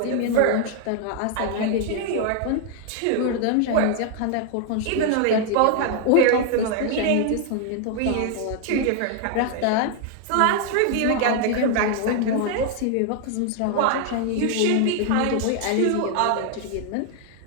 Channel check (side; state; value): both; different; correlation 0.00